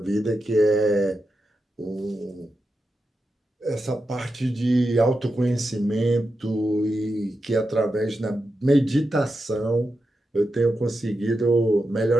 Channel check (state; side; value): normal; both; correlation 0.88